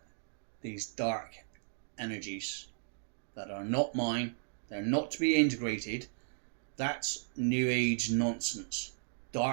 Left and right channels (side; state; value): left; silent; digital silence